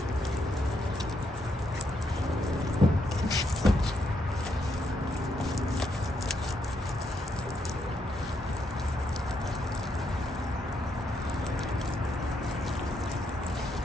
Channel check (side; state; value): both; normal; correlation 0.78